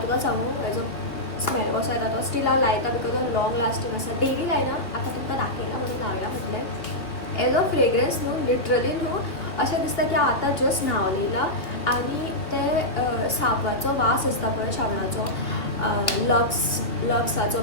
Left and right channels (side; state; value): right; late; 2.5 ms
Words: तुका सांगू हेजो स्मेल कसो येता तो स्टील हांव लायता बिकॉज हो लॉंग लास्टींग आसा. डेली लायना आतां तुमकां दाखयला म्हणून लावया म्हटलें. एज अ फ्रेग्रन्स न्हू लिटरली न्हू अशें दिसता की हांव आतां जस्ट न्हांवन येयला आनी ते साबणाचो वास आसता पळय शाबणाचो लक्साचो